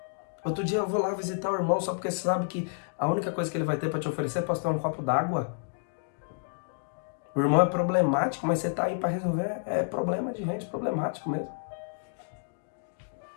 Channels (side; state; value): right; silent; digital silence